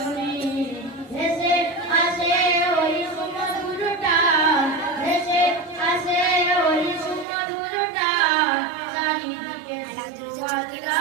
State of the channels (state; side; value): drops out; left; at 7.2 s